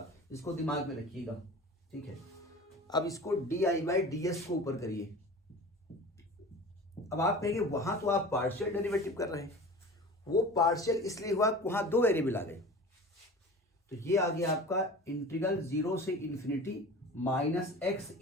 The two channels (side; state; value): both; normal; correlation 0.38